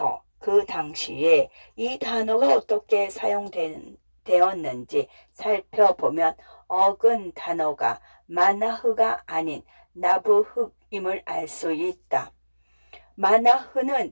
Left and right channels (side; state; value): both; inverted; correlation -1.00